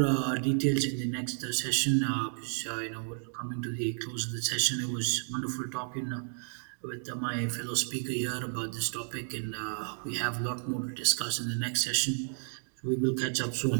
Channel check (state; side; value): silent; left; digital silence